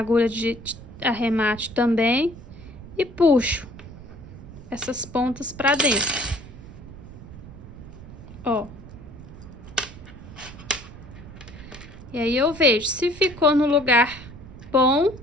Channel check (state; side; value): noise; right; rumble, 16 dB below the sound